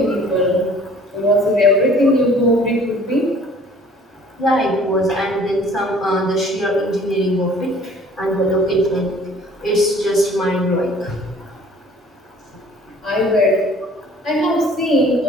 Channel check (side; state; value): both; normal; correlation 0.53